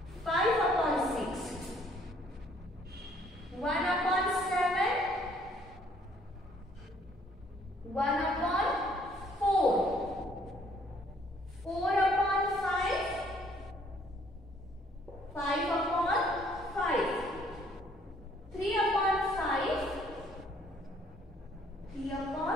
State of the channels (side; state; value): both; normal; correlation 0.63